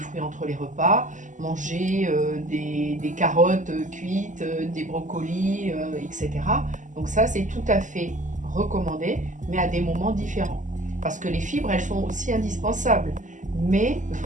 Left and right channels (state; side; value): late; left; 0.37 ms